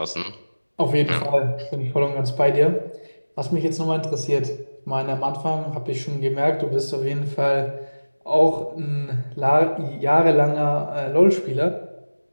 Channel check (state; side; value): inverted; both; correlation -1.00